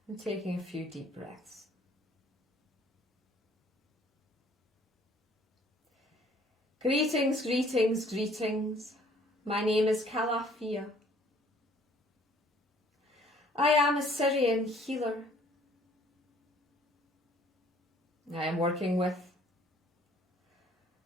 And taking a few deep breaths. Greetings, greetings, greetings. My name is Alphedia. I am a Syrian healer. I am working with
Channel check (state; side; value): normal; both; correlation 0.58